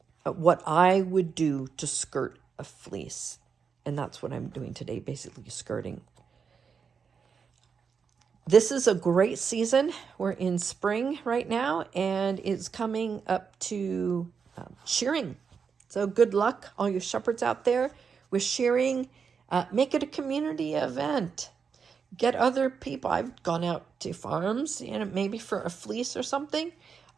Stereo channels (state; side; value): quieter; left; 6.1 dB